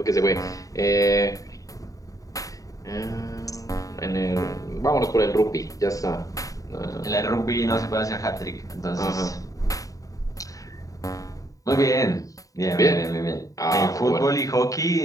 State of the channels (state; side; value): late; right; 0.16 ms